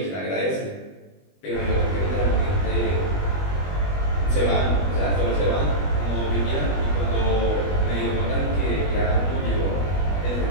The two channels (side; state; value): right; late; 21 ms